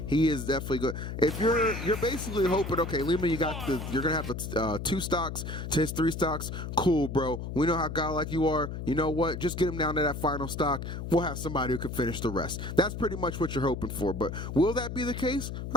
he is definitely good. If you're basically hoping, okay, Lima, you're gonna have the 2 stocks to his 3 stocks. Cool, bro. We know how godlike you are. You know what? Just get him down to that final stock. We'll have somebody who can finish the rest. That's pretty much what you're hoping for. But will that be the case?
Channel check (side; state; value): left; noise; hum, 6 dB below the sound